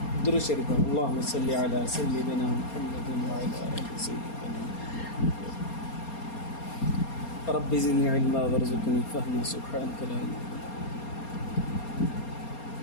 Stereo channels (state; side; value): late; right; 4.3 ms